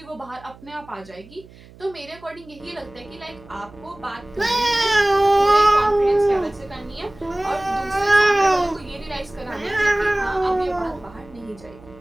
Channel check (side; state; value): right; noise; hum, 22 dB below the sound